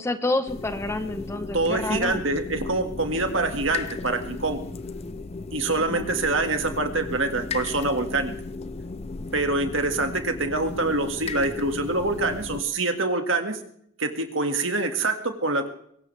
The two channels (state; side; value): normal; both; correlation 0.09